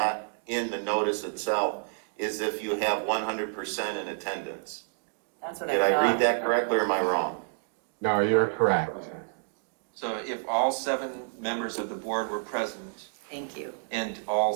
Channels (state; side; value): silent; left; digital silence